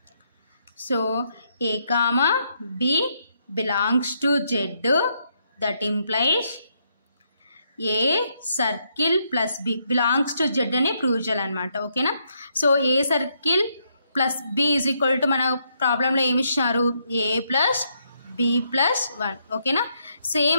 so a comma b belongs to z, that implies a circle plus b belongs to z అని ప్రూవ్ చేయాలన్నమాట, ఓకేనా. So A circle plus b is equal to మన ప్రాబ్లంలో ఏమి ఇచ్చినారు, a ప్లస్ b ప్లస్ 1, ఓకేనా.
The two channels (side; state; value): both; inverted; correlation -0.76